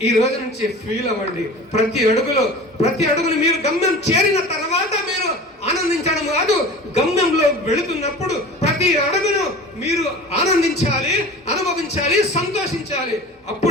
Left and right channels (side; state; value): both; normal; correlation 0.38